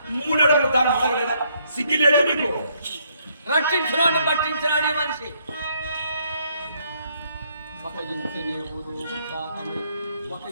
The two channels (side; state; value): both; inverted; correlation -0.71